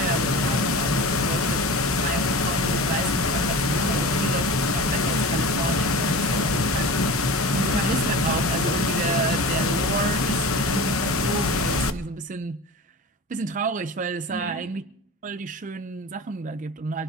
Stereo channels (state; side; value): normal; both; correlation 0.33